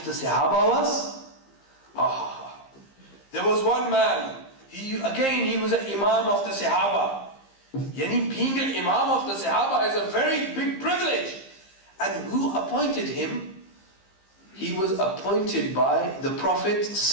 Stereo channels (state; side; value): late; right; 15 ms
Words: the Sahaba was? Ah, there was one man. He was an Imam of the Sahaba. Yani being an Imam of the Sahaba is a very big privilege. And who appointed him? He was appointed by the Prophet